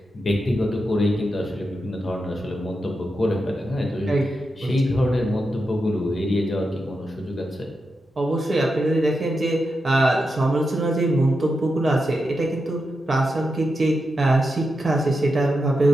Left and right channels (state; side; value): normal; both; correlation 0.88